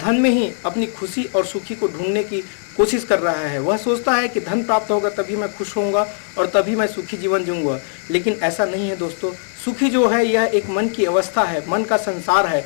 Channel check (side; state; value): right; silent; 65 dB below the other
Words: में ही अपनी खुशी और सुखी को ढूंढने की कोशिश कर रहा है। वह सोचता है कि धन प्राप्त होगा तभी मैं खुश होऊंगा और तभी मैं सुखी जीवन जीऊंगा। लेकिन ऐसा नहीं है दोस्तों। सुखी जो है यह एक मन की अवस्था है, मन का संसार है,